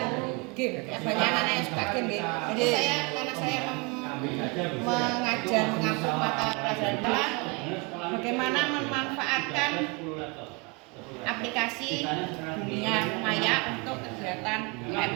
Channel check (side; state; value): left; quieter; 28.5 dB